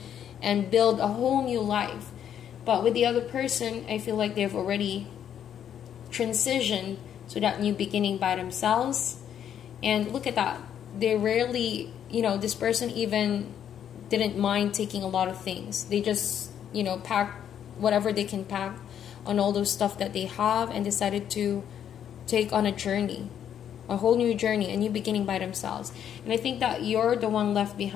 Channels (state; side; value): quieter; right; 9.4 dB